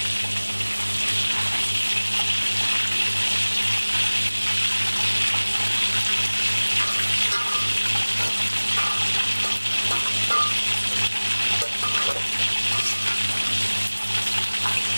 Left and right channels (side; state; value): both; inverted; correlation -1.00